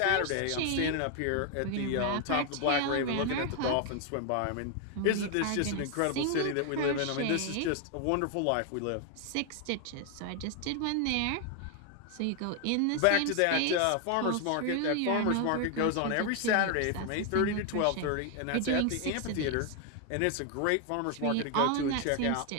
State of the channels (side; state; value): both; different; correlation 0.01